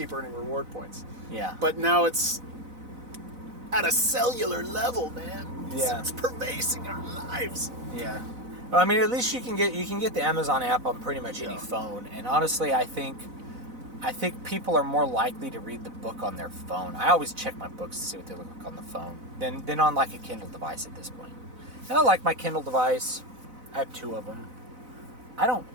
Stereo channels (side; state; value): left; late; 4.0 ms